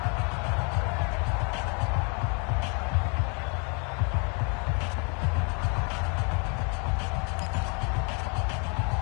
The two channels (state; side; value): quieter; right; 35.0 dB